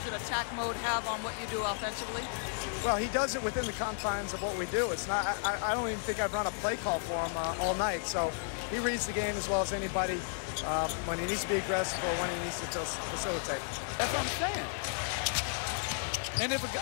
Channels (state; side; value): silent; right; 56 dB below the other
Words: in attack mode have on what you do offensively? Well, he does it within the confines of what we do. It's not. I don't even think I've run a play call for him all night. So he reads the game as well as anybody when he needs to be aggressive or when he needs to facilitate. That's what I'm saying. And if